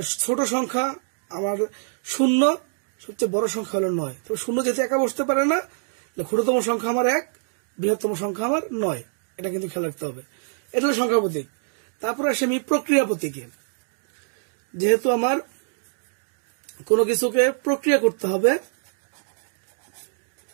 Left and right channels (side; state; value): left; silent; digital silence